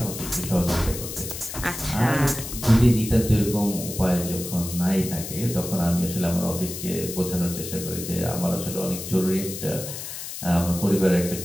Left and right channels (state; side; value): noise; left; hiss, 8 dB below the sound